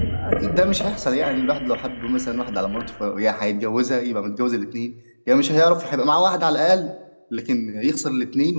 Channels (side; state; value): both; inverted; correlation -1.00